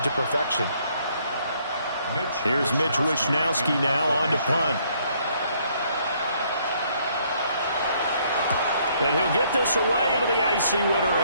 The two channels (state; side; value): inverted; both; correlation -0.67